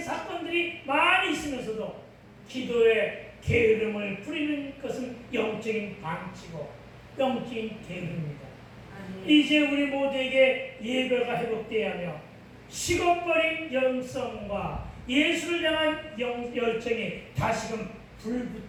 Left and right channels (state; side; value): identical; both; correlation 1.00